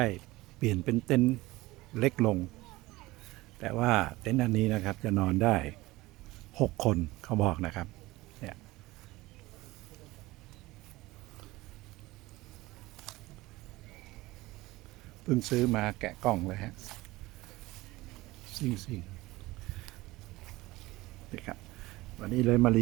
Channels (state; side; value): quieter; left; 19.6 dB